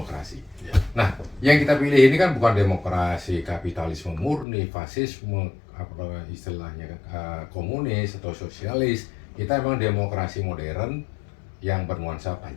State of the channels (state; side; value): drops out; right; at 4.5 s